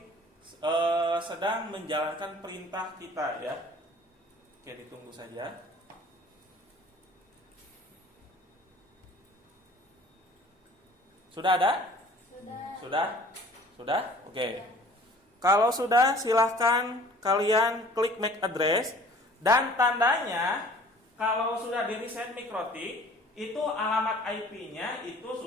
sedang menjalankan perintah kita ya. Oke, ditunggu saja. Sudah ada? Sudah? Oke. Kalau sudah, silahkan kalian klik MAC address. Dan tandanya kalau sudah di reset mikrotik, itu alamat IP-nya itu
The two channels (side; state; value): both; normal; correlation 0.50